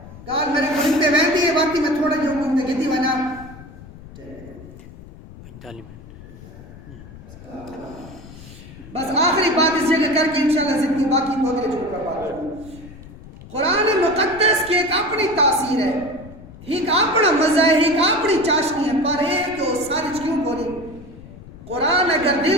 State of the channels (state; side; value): noise; left; rumble, 17 dB below the sound